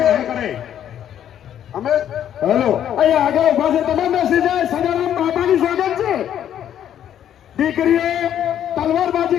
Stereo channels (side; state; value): right; quieter; 10.3 dB